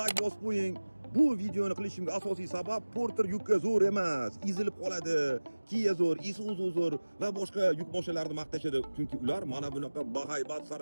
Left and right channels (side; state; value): both; inverted; correlation -1.00